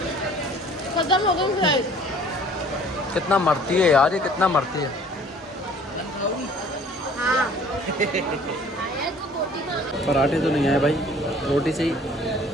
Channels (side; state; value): both; normal; correlation 0.53